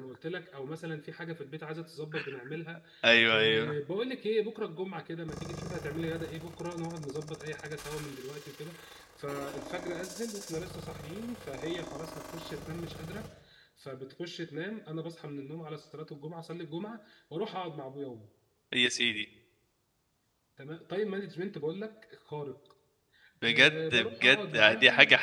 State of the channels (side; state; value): both; identical; correlation 1.00